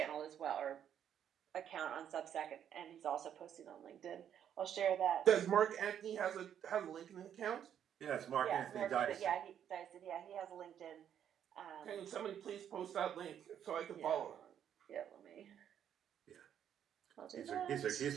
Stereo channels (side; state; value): left; quieter; 9.4 dB